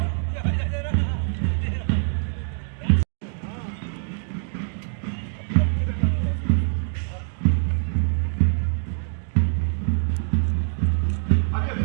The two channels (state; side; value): silent; left; digital silence